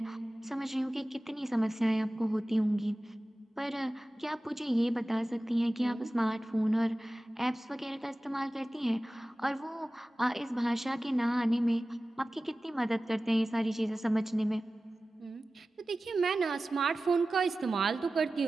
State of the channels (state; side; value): normal; both; correlation 0.96